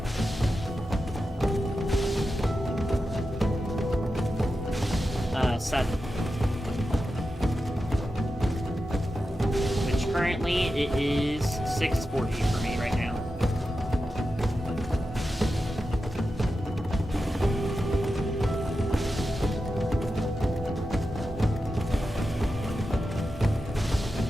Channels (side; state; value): both; normal; correlation 0.91